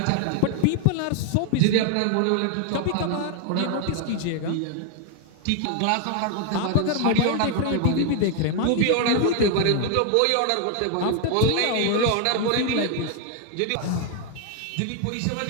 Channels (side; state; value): both; different; correlation 0.00